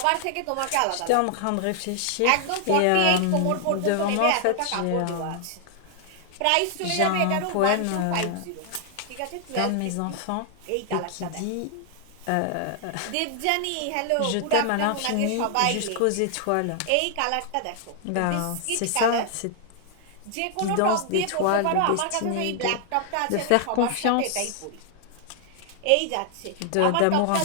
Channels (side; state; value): both; different; correlation 0.00